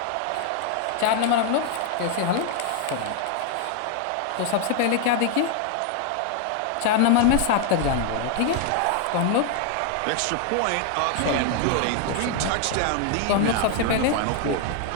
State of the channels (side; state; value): both; different; correlation 0.00